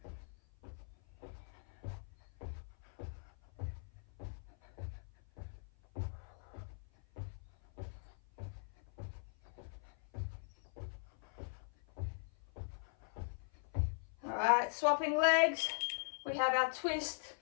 All right, swapping legs. We have our twist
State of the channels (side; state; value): right; silent; 50 dB below the other